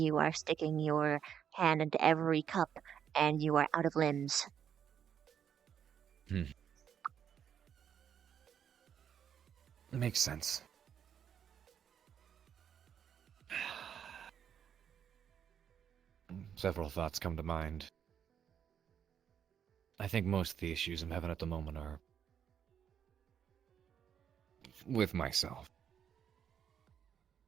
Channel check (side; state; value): left; quieter; 8.5 dB